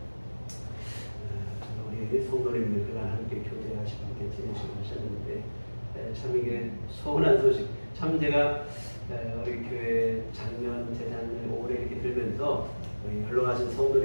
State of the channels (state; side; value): inverted; both; correlation -1.00